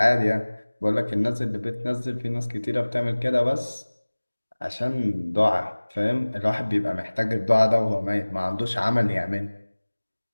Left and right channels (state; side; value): inverted; both; correlation -1.00